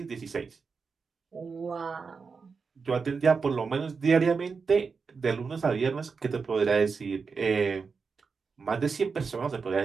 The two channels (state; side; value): quieter; left; 5.1 dB